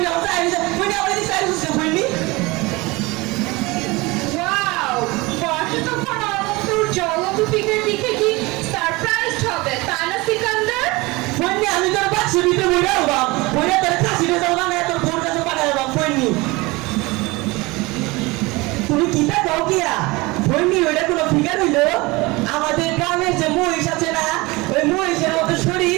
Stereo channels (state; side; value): quieter; left; 23.3 dB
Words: আমার চাইছে, ফোননি আমার দিকে চাইছে ফোননি। ওয়াও, বর্ষা তখন অনন্তর জলন্ত ফিগার দেখে কি সারপ্রাইজড হবে, তাই না সিকান্দার? ফোননি আমি তোর বাক্স দিতে বইরা বাপ, বইরা তোর কাশিতে যাও না তোর বোন কাছে পাঠায় বাপ ফোননি। কিতা কও কিয়া ফইনি ওইটা কোনো ফিগার হইলো আমাদের গ্রামের যে মহিষ আছে না ওই মহিষের মতো